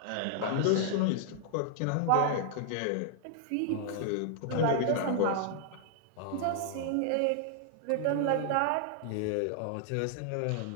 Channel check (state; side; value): different; both; correlation -0.01